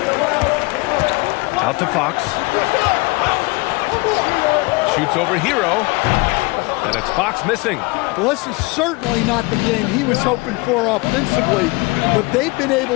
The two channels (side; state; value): right; quieter; 25.7 dB